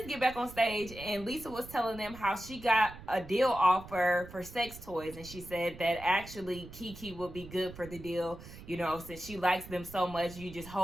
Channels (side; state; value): right; noise; rumble, 15 dB below the sound